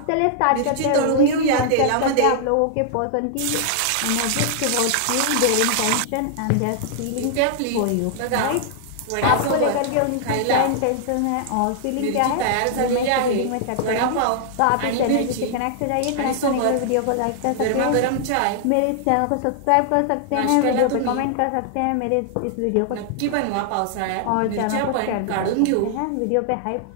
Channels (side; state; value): both; different; correlation -0.01